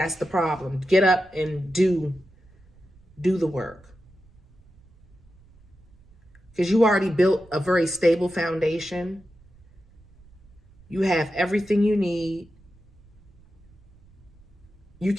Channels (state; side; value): noise; right; rumble, 27 dB below the sound